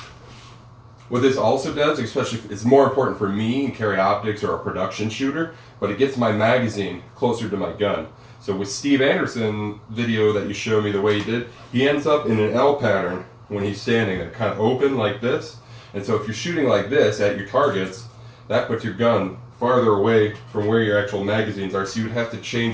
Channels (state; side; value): identical; both; correlation 1.00